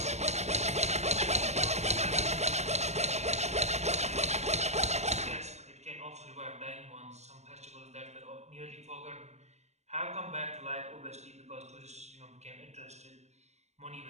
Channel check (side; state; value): left; late; 0.33 ms